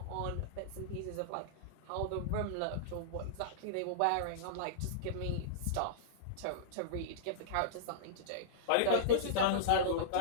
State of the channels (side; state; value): both; different; correlation -0.03